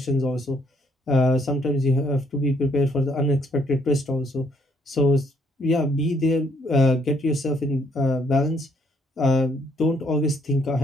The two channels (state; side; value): normal; both; correlation 0.68